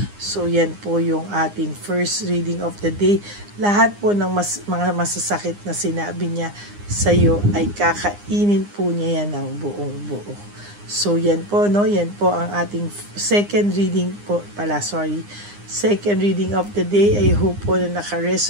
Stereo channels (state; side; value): late; left; 9.8 ms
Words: So yan po yung ating first reading of the day. Lahat po ng mga masasakit na sinabi niya sa iyo ay kakainin po niya yan ng buong buo. So yan po, no? Yan po ang ating second reading po pala, second reading of the day. I hope po na